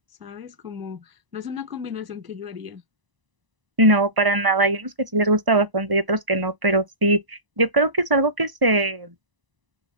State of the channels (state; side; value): late; left; 1.0 ms